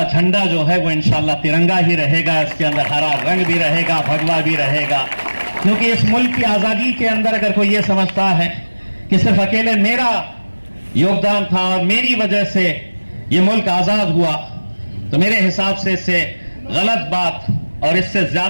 झंडा जो है वो इंशाअल्लाह तिरंगा ही रहेगा, इसके अंदर हरा रंग भी रहेगा, भगवा भी रहेगा। क्योंकि इस मुल्क की आजादी के अंदर अगर कोई ये समझता है कि सिर्फ अकेले मेरा योगदान था और मेरी वजह से ये मुल्क आजाद हुआ, तो मेरे हिसाब से इससे गलत बात और इससे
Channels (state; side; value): inverted; both; correlation -1.00